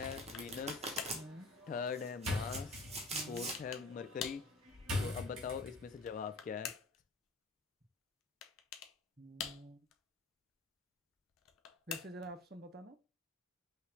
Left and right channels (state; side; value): quieter; right; 3.1 dB